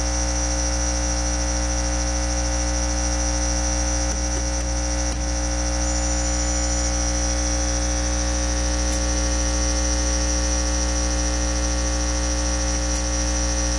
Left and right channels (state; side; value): identical; both; correlation 1.00